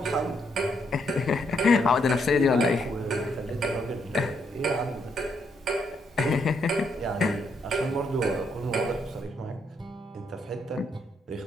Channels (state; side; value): normal; both; correlation 0.75